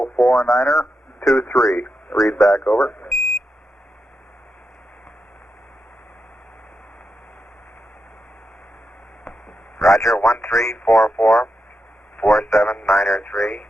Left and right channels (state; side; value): normal; both; correlation 0.86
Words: Read back over. Roger, 1344 4793